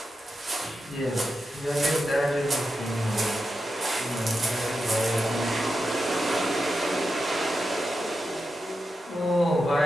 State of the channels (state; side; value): normal; both; correlation 0.89